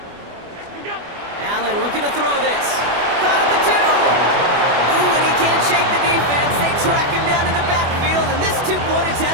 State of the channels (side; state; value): left; late; 24 ms